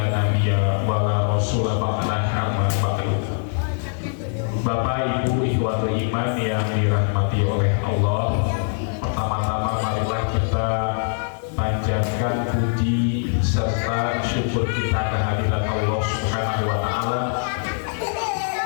nabiyya wa la rasula ba'dahu amma ba'du. Bapak Ibu ikhwatul iman yang dirahmati oleh Allah, pertama-tama marilah kita panjatkan puji serta syukur kita kehadirat Allah Subhanahu wa taala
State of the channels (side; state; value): right; silent; digital silence